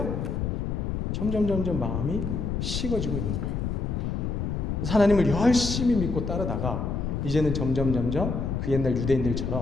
점점 마음이 식어지고 있는 거예요. 하나님을 열심히 믿고 따르다가 이제는 점점 그 옛날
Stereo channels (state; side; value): noise; left; rumble, 2 dB below the sound